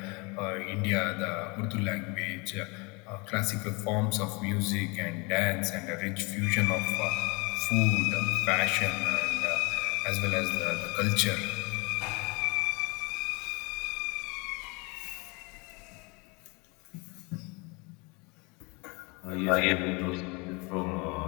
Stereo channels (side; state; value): right; quieter; 28.7 dB